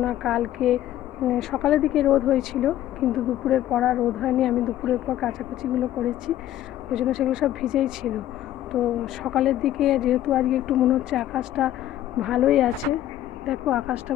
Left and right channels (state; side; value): quieter; right; 12.9 dB